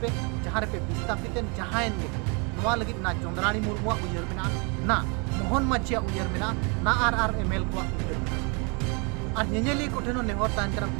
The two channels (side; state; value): left; quieter; 33.0 dB